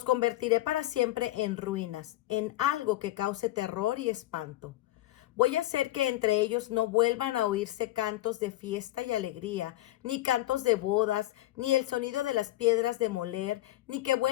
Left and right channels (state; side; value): quieter; right; 15.9 dB